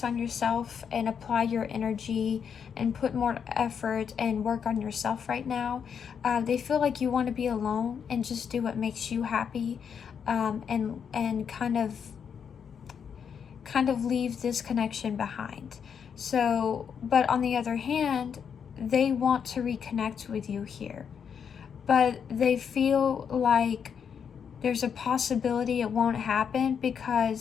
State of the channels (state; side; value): quieter; right; 7.2 dB